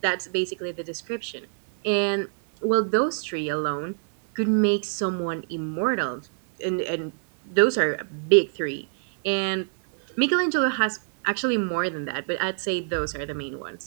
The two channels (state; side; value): silent; left; digital silence